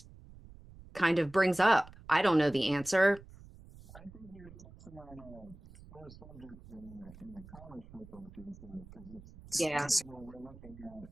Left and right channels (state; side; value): noise; right; rumble, 19 dB below the sound